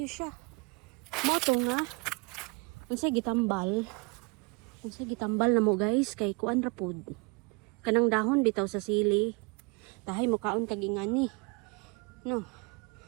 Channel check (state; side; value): quieter; left; 29.5 dB